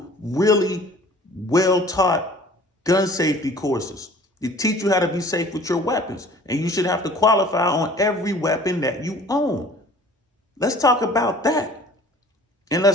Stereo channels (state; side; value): normal; both; correlation 0.49